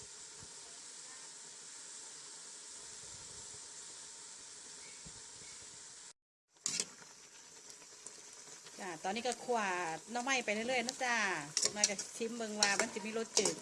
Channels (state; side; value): identical; both; correlation 1.00